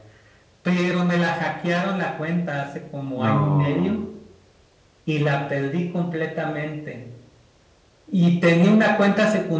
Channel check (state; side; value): identical; both; correlation 1.00